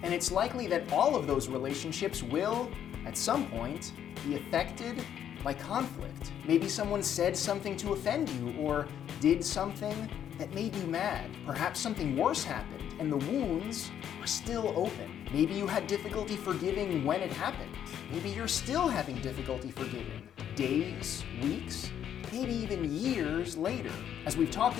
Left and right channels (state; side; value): quieter; right; 9.7 dB